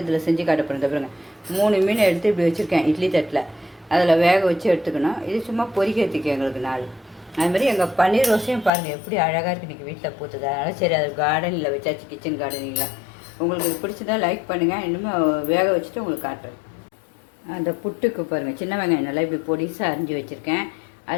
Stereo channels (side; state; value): right; drops out; at 8.7 s